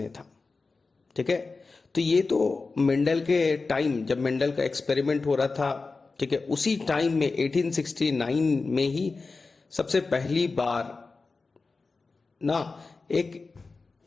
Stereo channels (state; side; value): quieter; right; 4.0 dB